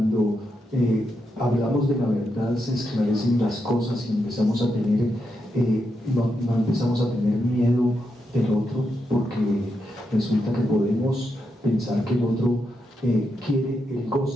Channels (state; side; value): normal; both; correlation 0.83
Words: hablamos de la verdad se esclarecen las cosas y empezamos a tener, no empezamos a tener miedo del otro, porque resulta que podemos pensar que el otro quiere el